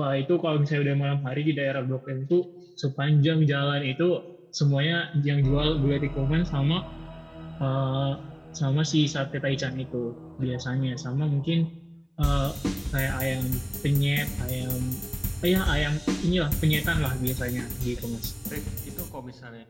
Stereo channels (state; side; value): identical; both; correlation 1.00